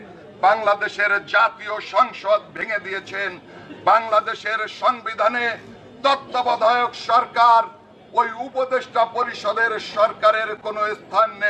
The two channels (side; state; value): both; identical; correlation 1.00